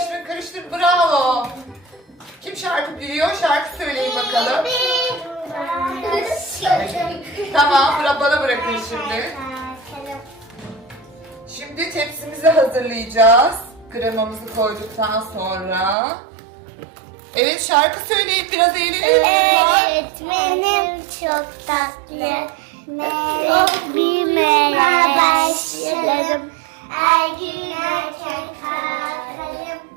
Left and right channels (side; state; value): left; drops out; at 16.0 s